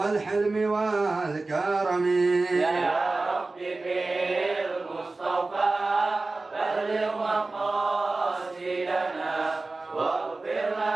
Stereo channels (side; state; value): left; quieter; 3.4 dB